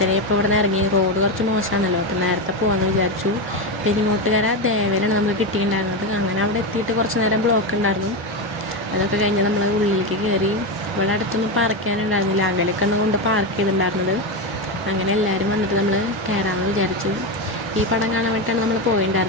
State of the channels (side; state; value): both; normal; correlation 0.13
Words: ഇപ്പോൾ ഇവിടെ നിന്ന് ഇറങ്ങി. റോഡ് കുറച്ച് മോശമാണല്ലോ, അപ്പോൾ നേരത്തെ പോകാമെന്ന് വിചാരിച്ചു. പെരിങ്ങോട്ടുകര ദേവയിലാണ് നമുക്ക് കിട്ടിയിട്ടുണ്ടായിരുന്നത്. അങ്ങനെ അവിടെ എത്തിയിട്ട് കുറച്ച് നേരം ബ്ലോക്ക് ഉണ്ടായിരുന്നു. അതൊക്കെ കഴിഞ്ഞ് നമ്മൾ ഉള്ളിലേക്ക് കയറി. ഇവിടെ അടുത്തൊന്നും പാർക്ക് ചെയ്യാനുണ്ടായിരുന്നില്ല, അകലൊക്കെ കൊണ്ട് പാർക്ക് ചെയ്തിട്ടുണ്ടായിരുന്നത്. അങ്ങനെ എല്ലാവരും വന്നിട്ട് നമ്മൾ കയറാമെന്ന് വിചാരിച്ചു. ഈ പടം കാണാൻ വേണ്ടിയിട്ടാണ് നമ്മൾ